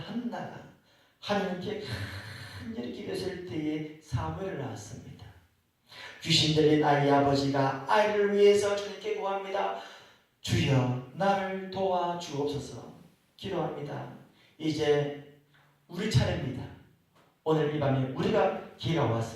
하나님께 간절히 기도했을 때에 사무엘을 낳았습니다. 귀신 들린 아이의 아버지가 아이를 위해서 주님께 구합니다. 주여 나를 도와주옵소서 기도합니다. 이제 우리 차례입니다. 오늘 이 밤에 우리가 기회가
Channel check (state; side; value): identical; both; correlation 1.00